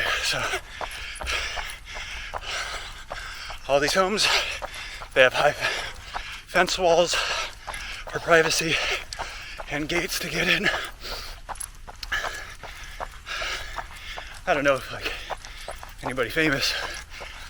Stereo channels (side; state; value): both; identical; correlation 1.00